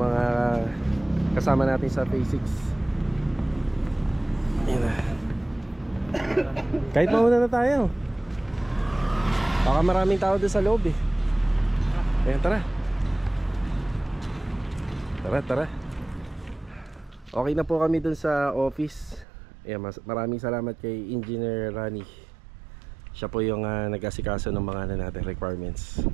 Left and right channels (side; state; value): left; drops out; at 19.2 s